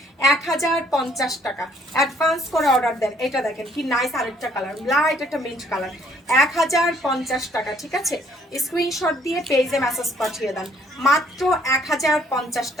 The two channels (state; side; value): normal; both; correlation 0.63